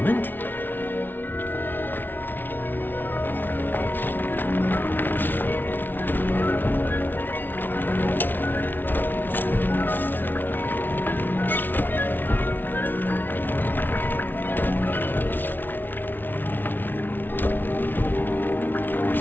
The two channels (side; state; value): right; late; 0.092 ms